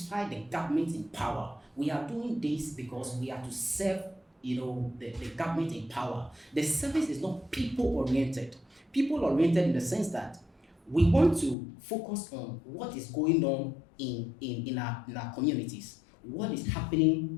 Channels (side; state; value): right; drops out; at 11.6 s